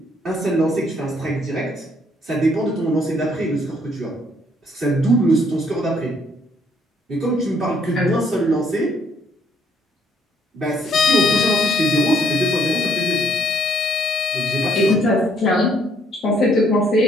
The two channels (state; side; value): normal; both; correlation 0.66